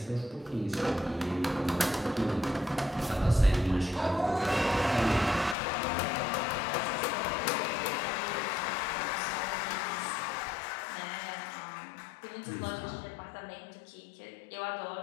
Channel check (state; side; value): drops out; right; at 5.6 s